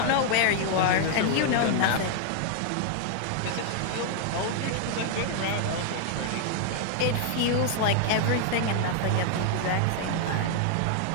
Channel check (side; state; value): both; different; correlation 0.00